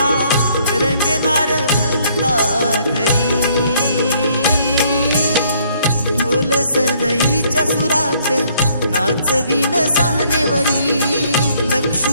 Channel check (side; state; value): both; inverted; correlation -0.65